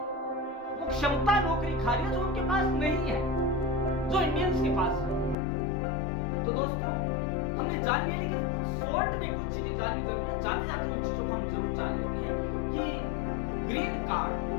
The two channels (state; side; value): drops out; right; at 5.4 s